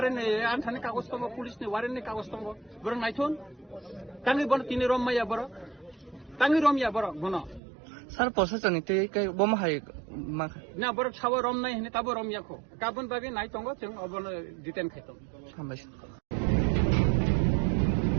antane kagos tongo pulis ni waren ni kagos tongo. Borong naithun. Tangi bono tini rom maya boro. Tangi rom ya boro bono. Sir প্রশাসনিক থেকে বোমা high Na borok sawo rom nai hini tabo rom yako. Kabun bagi nai tongo chung obono diten khaitong. হামবাইছে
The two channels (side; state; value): left; drops out; at 7.6 s